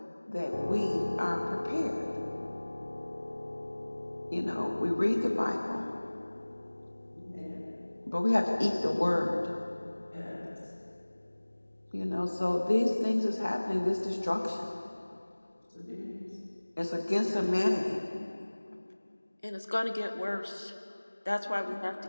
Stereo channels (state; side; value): inverted; both; correlation -1.00